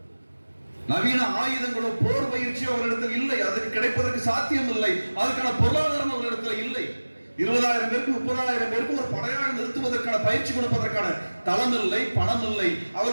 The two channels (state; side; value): inverted; both; correlation -1.00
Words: நவீன ஆயுதங்களோ போர் பயிற்சியோ அவர்களிடத்தில் இல்லை. அதுக்கு கிடைப்பதற்கு சாத்தியம் இல்லை. அதுக்கான பொருளாதாரம் அவர்களிடத்தில் இல்லை. 20,000 பேருக்கு 30,000 பேருக்கு ஒரு படையாக நிறுத்துவதற்கான பயிற்சி கொடுப்பதற்கான தளம் இல்லை, பணம் இல்லை.